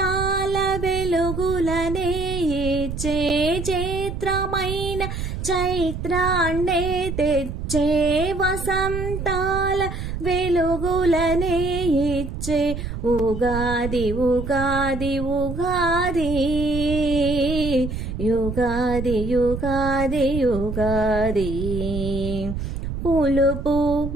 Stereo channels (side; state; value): right; noise; rumble, 6 dB below the sound